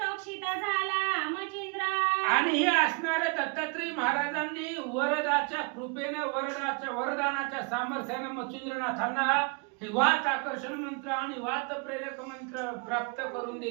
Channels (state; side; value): quieter; left; 33.8 dB